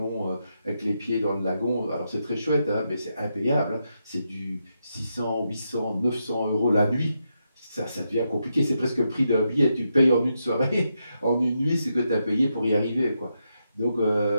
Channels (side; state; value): both; inverted; correlation -0.83